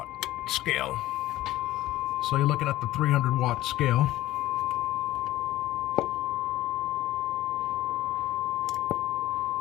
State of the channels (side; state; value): right; quieter; 15.7 dB